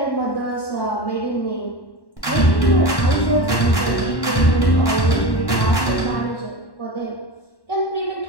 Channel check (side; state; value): right; late; 1.1 ms